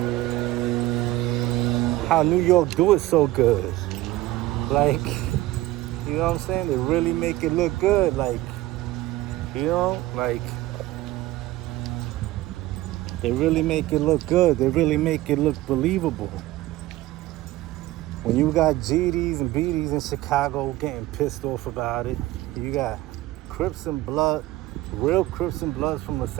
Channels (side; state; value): left; quieter; 17.1 dB